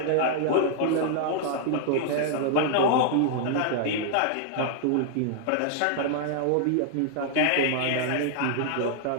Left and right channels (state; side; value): different; both; correlation 0.00